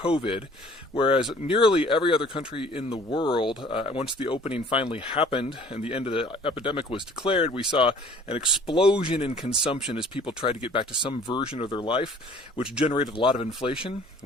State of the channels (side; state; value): both; normal; correlation 0.52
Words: whereas nearly every other country in the world, once the opening finally happened and the end of the epidemic was declared, we saw an explosion in consumption as people tried to get back to some version of their life, which generated a lot of inflation.